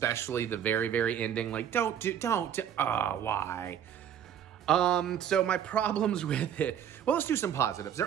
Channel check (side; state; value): left; quieter; 9.3 dB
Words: the very, very ending. Like, why? So my problems with it. Well, let's do some positives.